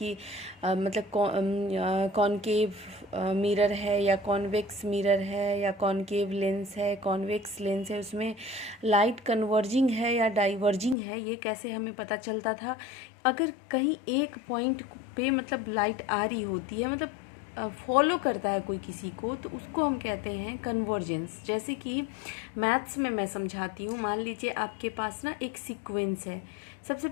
कॉनकेव मिरर है या कॉन्वेक्स मिरर है या कॉनकेव लेंस है, कॉन्वेक्स लेंस है, उसमें लाइट कन्वर्जिंग है या डाइवर्जिंग है, ये कैसे हमें पता चलता था? अगर कहीं एक पॉइंट पे लाइट आ रही होती है, फॉलो करता है कोई किसी को, तो उसको हम कहते हैं कन्वर्जेंस। जैसे कि मैथ्स में मैं समझाती हूँ। मान लीजिए आपके पास ना एक सीक्वेंस है। सबसे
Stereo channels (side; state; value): right; drops out; at 11.0 s